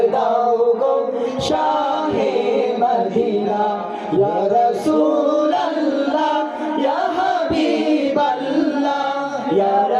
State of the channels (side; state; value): both; identical; correlation 1.00